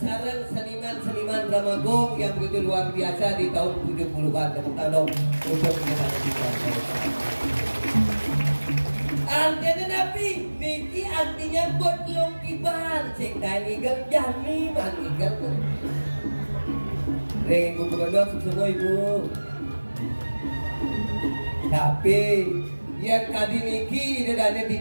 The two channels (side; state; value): both; inverted; correlation -1.00